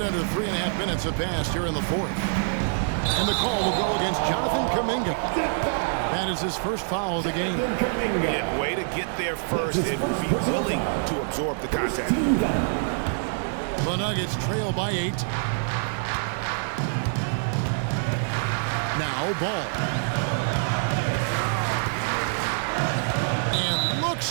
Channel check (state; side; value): silent; left; digital silence